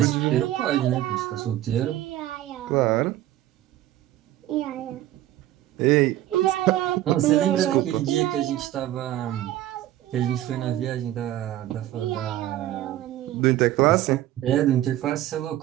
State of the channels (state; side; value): quieter; left; 13.9 dB